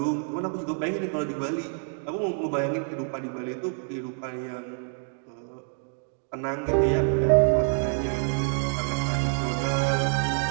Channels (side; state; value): left; silent; 60 dB below the other